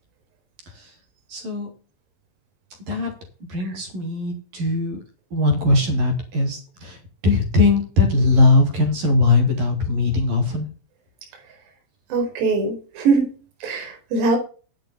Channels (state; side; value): late; left; 11 ms